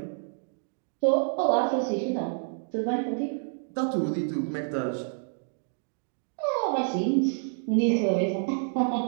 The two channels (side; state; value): left; silent; digital silence